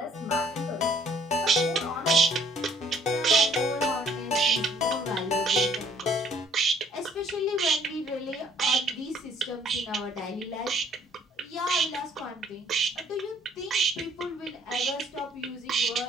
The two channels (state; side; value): normal; both; correlation 0.60